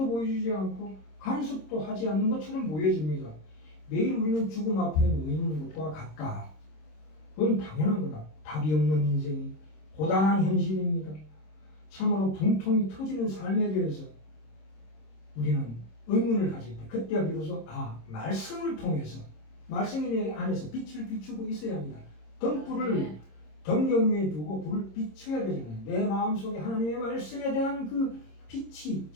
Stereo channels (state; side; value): late; right; 26 ms